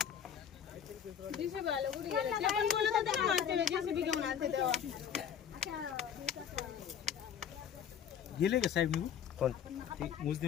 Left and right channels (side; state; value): right; quieter; 8.5 dB